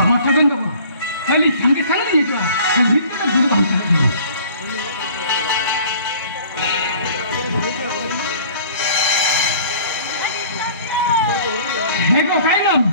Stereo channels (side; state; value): both; inverted; correlation -0.50